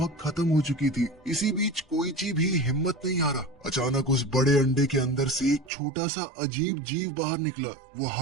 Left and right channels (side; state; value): left; drops out; at 5.7 s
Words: खत्म हो चुकी थी। इसी बीच कोइची भी हिम्मत नहीं हारा। अचानक उस बड़े अंडे के अंदर से एक छोटा सा अजीब जीव बाहर निकला। वो